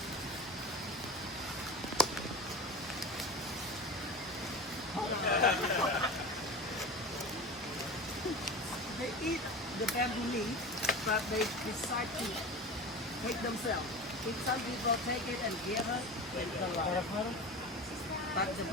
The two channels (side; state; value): both; normal; correlation 0.31